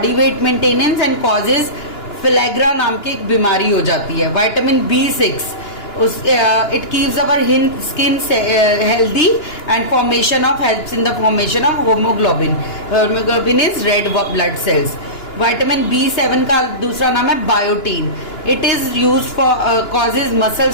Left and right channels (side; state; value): right; late; 2.9 ms